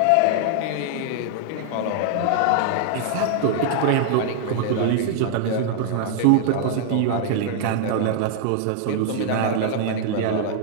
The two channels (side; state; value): both; different; correlation -0.01